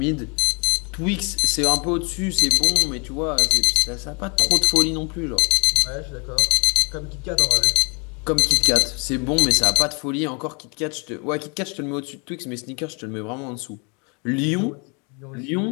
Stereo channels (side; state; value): right; quieter; 33.8 dB